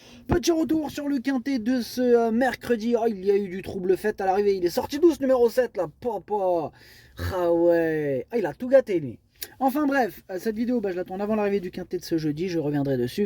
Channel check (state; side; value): identical; both; correlation 1.00